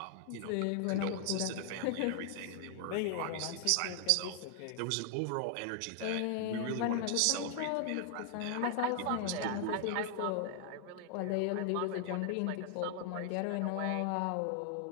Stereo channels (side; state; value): both; different; correlation 0.00